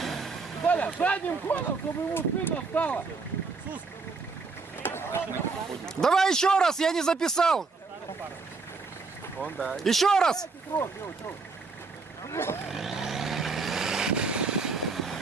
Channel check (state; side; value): quieter; left; 4.3 dB